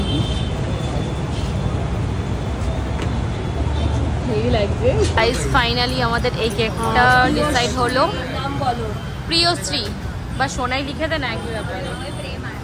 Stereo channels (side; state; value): both; identical; correlation 1.00